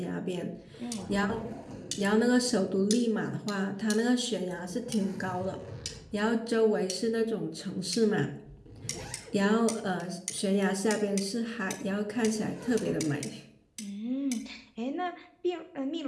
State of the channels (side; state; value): both; identical; correlation 1.00